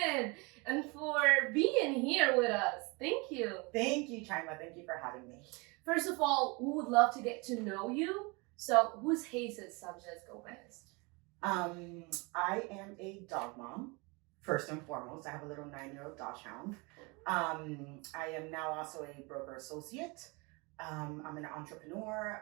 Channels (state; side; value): quieter; left; 28.2 dB